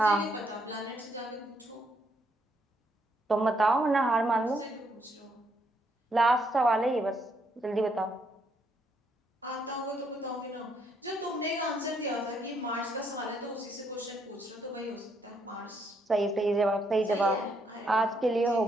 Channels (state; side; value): normal; both; correlation 0.73